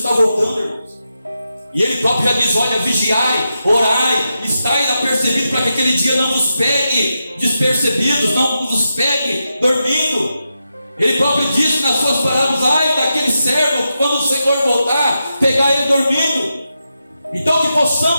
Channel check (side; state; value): both; inverted; correlation -0.87